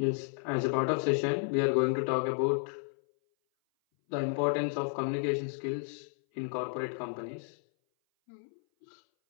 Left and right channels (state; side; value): silent; right; 56 dB below the other